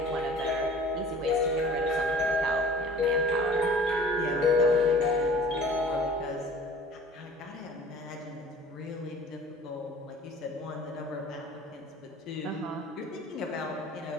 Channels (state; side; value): normal; both; correlation 0.47